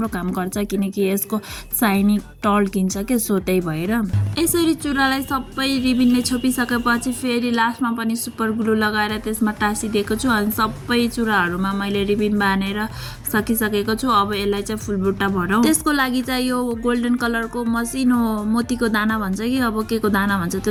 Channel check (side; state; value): both; identical; correlation 1.00